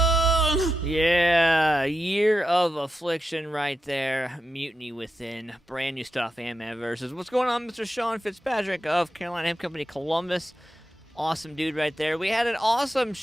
Yeah, Year of Affliction right there. Mutiny Within. Brand new stuff, AntmanVs. What's going on, Mr. Sean Fitzpatrick of Carolina Hemp Company, Columbus? Awesome dude right there. We had an awesome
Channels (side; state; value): both; normal; correlation 0.89